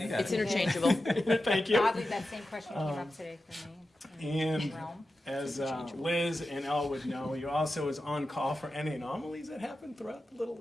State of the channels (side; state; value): both; normal; correlation 0.92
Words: It's interchangeable. Thank you. Oddly, that same question came up today for me. And Realm. as Liz and Elle would know, you also is on call for any anomalies that happen throughout the